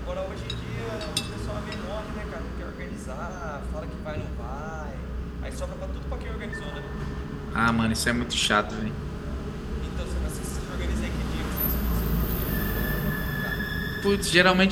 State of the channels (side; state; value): both; identical; correlation 1.00